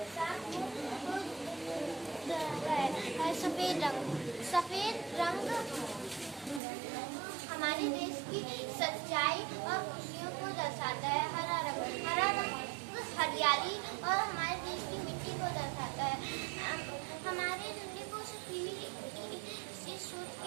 को दर्शाता है। सफेद रंग हमारे देश की सच्चाई और खुशियों को दर्शाता है। हरा रंग हरियाली और हमारे देश की मिट्टी को दर्शाता है। हमारे झंडे को सिर्फ सोच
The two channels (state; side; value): drops out; left; at 6.6 s